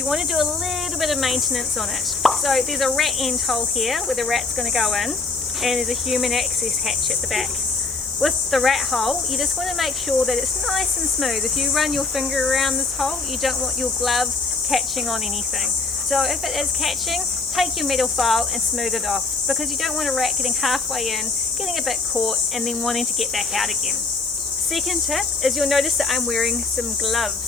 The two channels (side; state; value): right; quieter; 4.0 dB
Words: want to do a little bit of maintenance on it. So there's a rat end hole here where the rat's going to go in, and there's a human access hatch at the back. With the rat hole, you just want to make sure that it's nice and smooth. If you run your finger around this hole, you don't want your glove catching on anything. So if it is catching, take your metal file and smooth it off, because you don't want a rat getting halfway in, getting a bit caught, and then wanting to get back out again. Second tip is you'll notice that I'm wearing some